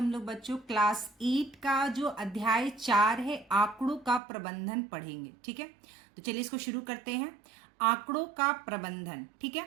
लोग बच्चों क्लास 8 का जो अध्याय 4 है आंकड़ों का प्रबंधन पढ़ेंगे। ठीक है, तो चलिए इसको शुरू करते हैं। आंकड़ों का प्रबंधन। ठीक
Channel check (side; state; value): left; drops out; at 4.2 s